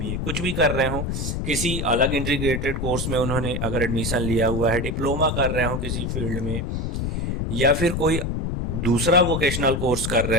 कुछ भी कर रहे हो, किसी अलग इंटीग्रेटेड कोर्स में उन्होंने अगर एडमिशन लिया हुआ है, डिप्लोमा कर रहे हो किसी फील्ड में, या फिर कोई दूसरा वोकेशनल कोर्स कर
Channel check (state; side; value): noise; left; rumble, 2 dB below the sound